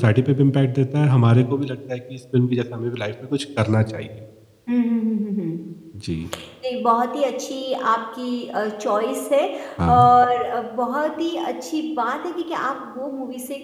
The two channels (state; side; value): identical; both; correlation 1.00